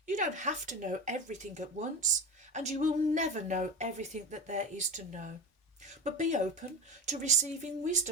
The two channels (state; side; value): normal; both; correlation 0.25